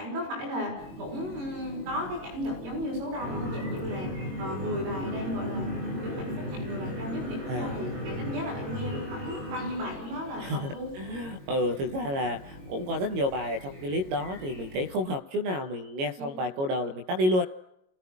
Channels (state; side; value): late; left; 22 ms